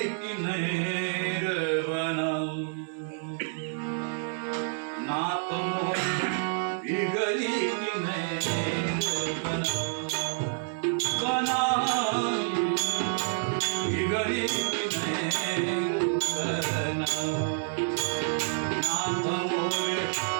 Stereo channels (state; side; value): silent; left; 59 dB below the other